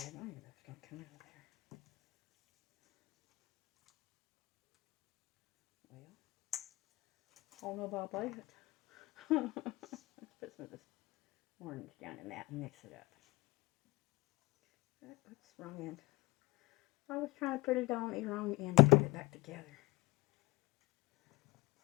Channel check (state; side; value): quieter; right; 21.8 dB